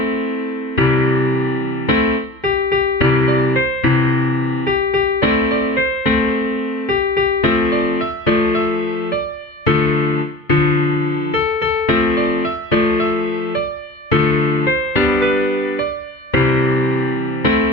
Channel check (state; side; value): late; right; 2.0 ms